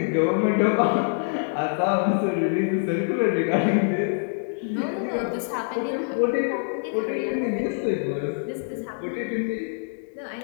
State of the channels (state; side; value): silent; right; digital silence